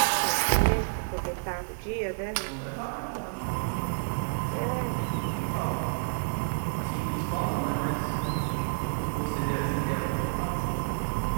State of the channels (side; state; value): left; silent; 58 dB below the other